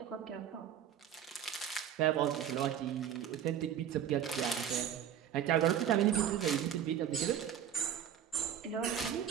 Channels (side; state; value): left; quieter; 9.5 dB